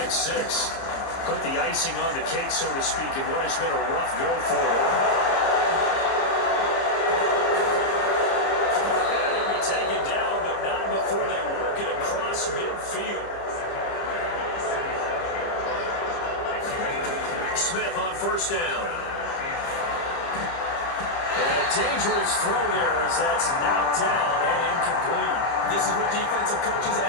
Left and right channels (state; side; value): late; right; 30 ms